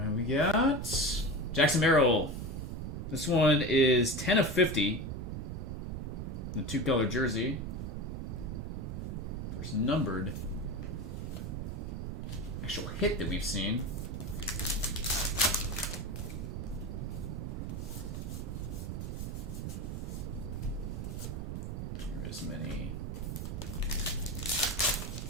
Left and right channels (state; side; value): noise; right; rumble, 4 dB below the sound